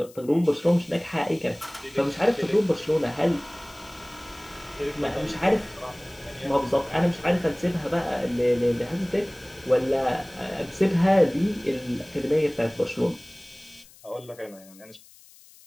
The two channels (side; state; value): left; noise; hiss, 24 dB below the sound